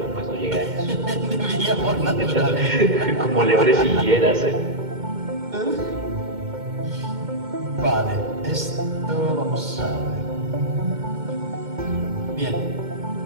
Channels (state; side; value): late; left; 2.1 ms